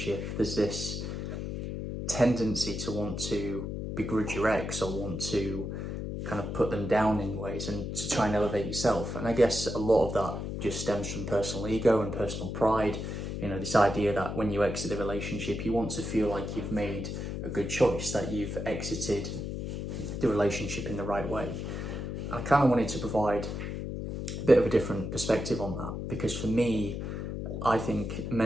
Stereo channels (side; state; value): left; noise; hum, 4 dB below the sound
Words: there's this tendency to want to begrudge your ex or want to kind of put them down in ways and to try and elevate yourself. And I guess a lot of that just stems from personal ego and personal pride. You know, this idea that when you exit the relationship, you want to feel like you've made a good choice, that you've exited the relationship in the right way. I kind of wanted to provide a bit of a different perspective on that, because for me, I think